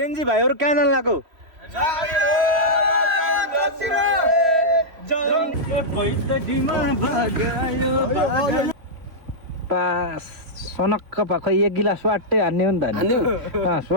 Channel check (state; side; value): late; left; 3.0 ms